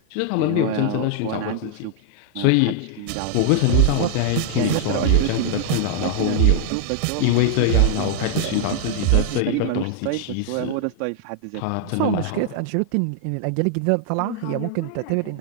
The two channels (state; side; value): different; both; correlation -0.01